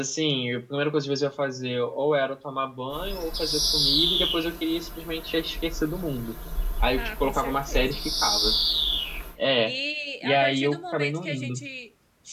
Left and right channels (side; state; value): both; identical; correlation 1.00